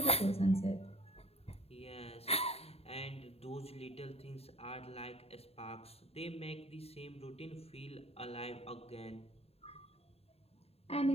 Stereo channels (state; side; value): late; right; 0.29 ms